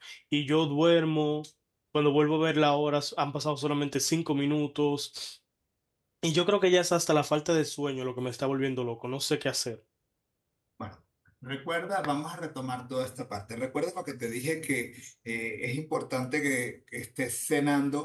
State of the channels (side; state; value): both; identical; correlation 1.00